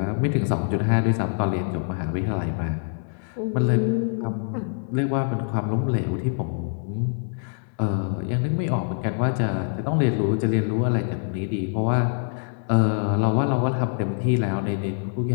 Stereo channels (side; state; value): right; silent; digital silence